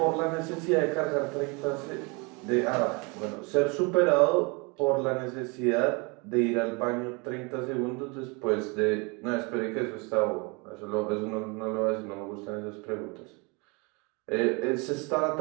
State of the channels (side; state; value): left; quieter; 29.9 dB